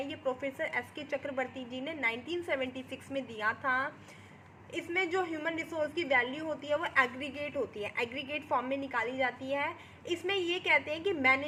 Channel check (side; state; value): both; identical; correlation 1.00